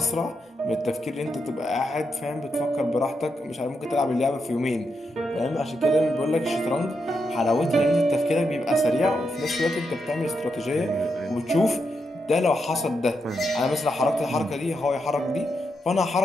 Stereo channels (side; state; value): both; normal; correlation 0.83